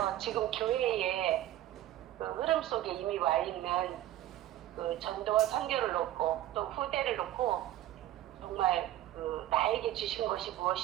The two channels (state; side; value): quieter; left; 13.8 dB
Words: 지금 교회의 그 흐름 속에 이미 와 있는 그 전도와 선교를 놓고 또 후대를 놓고 정말 그 나에게 주신 것이